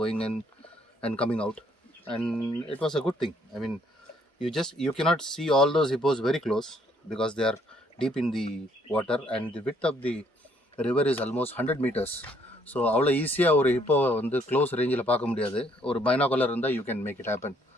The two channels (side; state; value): both; normal; correlation 0.67